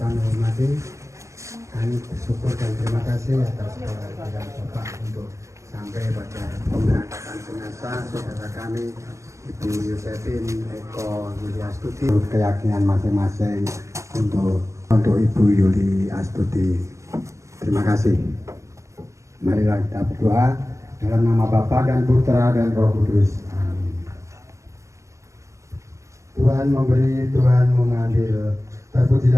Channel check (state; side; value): late; left; 0.15 ms